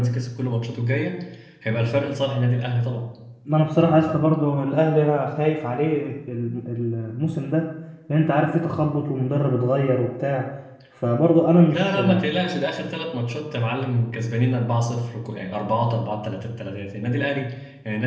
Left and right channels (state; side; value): identical; both; correlation 1.00